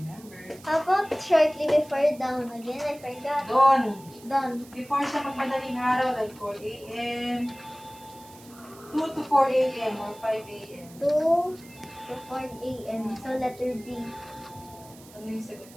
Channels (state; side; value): noise; right; hiss, 22 dB below the sound